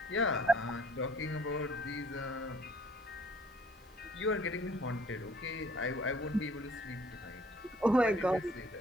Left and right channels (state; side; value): normal; both; correlation 0.58